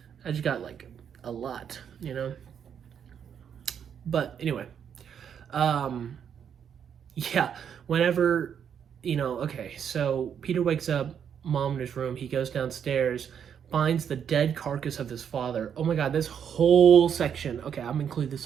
I just got like a lot, you know. But anyway, yeah, whenever, you know, okay, so Peter wakes up, mom in his room, he goes downstairs, finds the dead carcass of his father. Oh my god, this whole section, okay, I'm gonna include this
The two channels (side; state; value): left; quieter; 8.1 dB